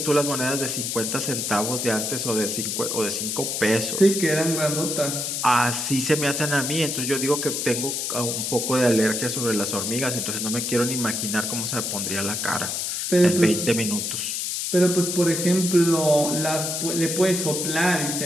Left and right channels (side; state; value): left; noise; hiss, 2 dB below the sound